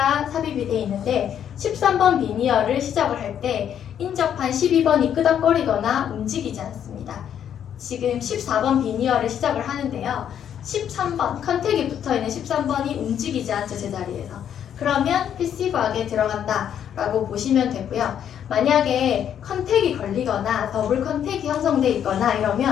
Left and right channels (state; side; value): quieter; right; 9.3 dB